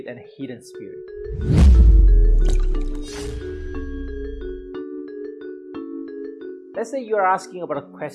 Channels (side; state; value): both; identical; correlation 1.00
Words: and hidden spirit. Let's say you are asking about a